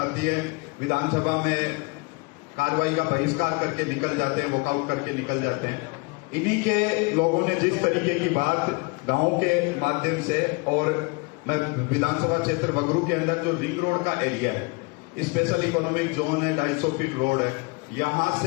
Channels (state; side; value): quieter; right; 28.1 dB